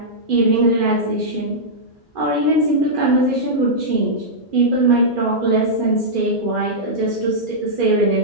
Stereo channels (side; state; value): both; normal; correlation -0.10